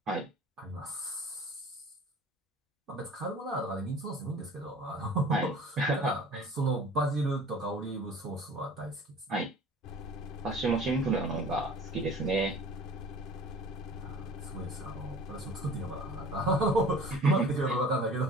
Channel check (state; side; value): normal; both; correlation 0.44